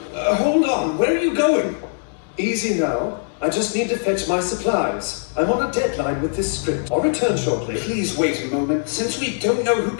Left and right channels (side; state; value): right; silent; 65 dB below the other